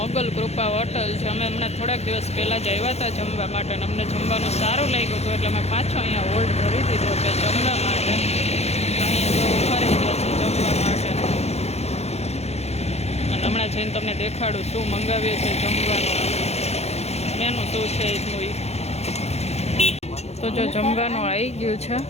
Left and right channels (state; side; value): late; right; 0.31 ms